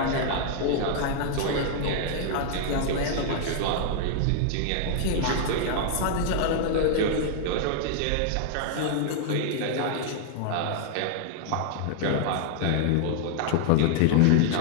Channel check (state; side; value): different; both; correlation -0.01